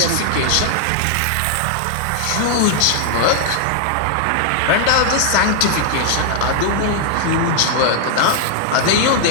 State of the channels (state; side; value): different; both; correlation 0.00